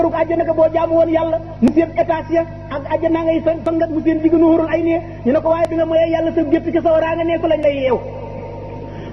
àjjana ka boo jaamu woon yàlla mu seen étage ya ak àjjana ngay fangat mu seen digg nuurul ay nee ñu ne ko waaye bi nga mooyee yàlla sa gétt ci sawaraa nga ne ko lañ lay yeew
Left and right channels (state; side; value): identical; both; correlation 1.00